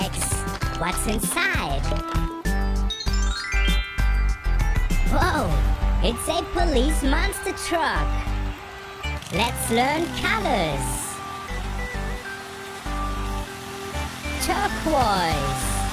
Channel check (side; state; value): both; identical; correlation 1.00